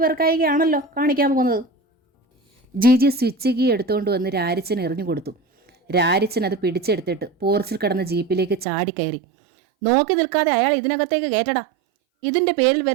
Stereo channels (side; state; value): left; drops out; at 8.7 s